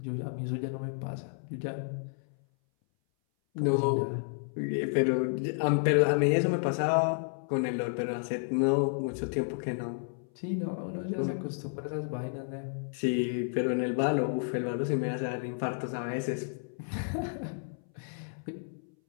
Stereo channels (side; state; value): right; silent; 57 dB below the other